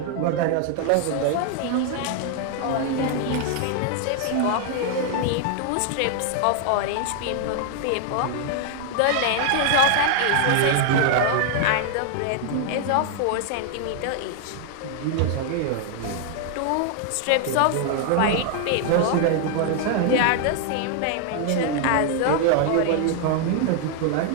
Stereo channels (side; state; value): both; different; correlation 0.00